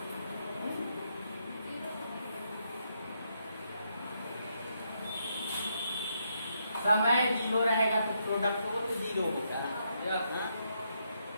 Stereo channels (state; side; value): inverted; both; correlation -0.78